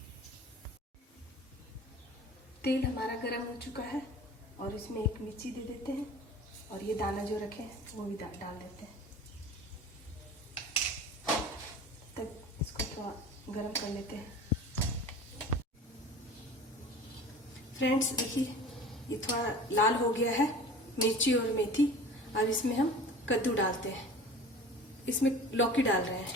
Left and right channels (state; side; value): normal; both; correlation 0.40